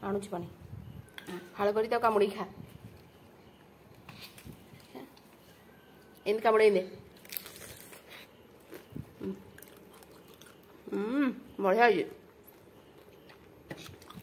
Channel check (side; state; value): both; identical; correlation 1.00